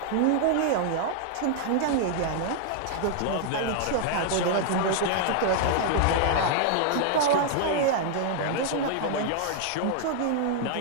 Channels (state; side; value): different; both; correlation 0.00